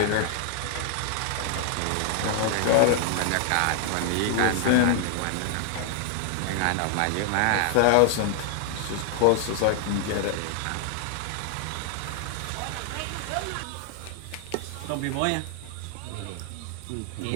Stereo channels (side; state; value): both; different; correlation 0.00